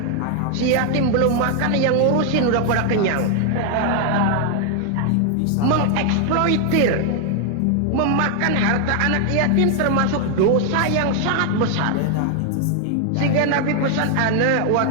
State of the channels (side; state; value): both; different; correlation 0.00